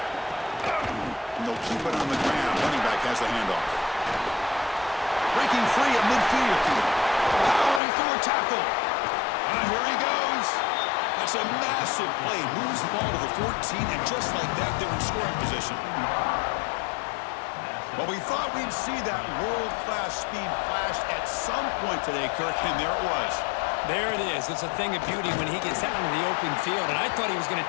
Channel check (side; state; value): right; drops out; at 7.8 s